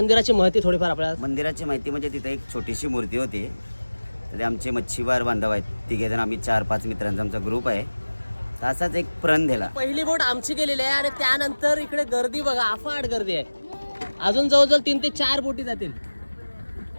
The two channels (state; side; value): inverted; both; correlation -1.00